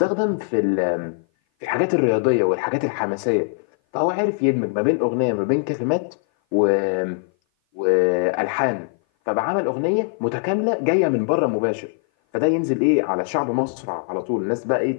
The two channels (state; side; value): silent; right; 57 dB below the other